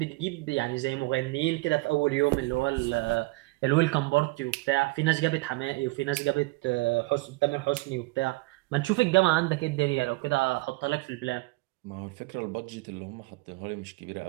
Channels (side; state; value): left; quieter; 23.2 dB